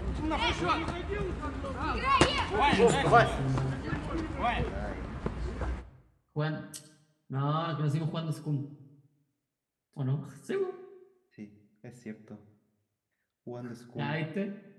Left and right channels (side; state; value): both; identical; correlation 1.00